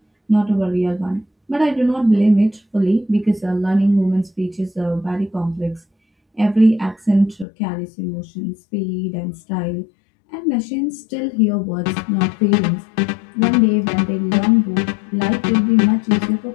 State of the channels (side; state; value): right; drops out; at 7.5 s